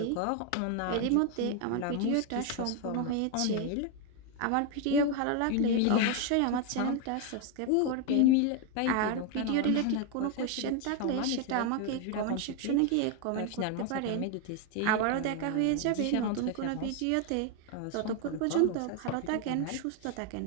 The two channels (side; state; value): both; different; correlation 0.01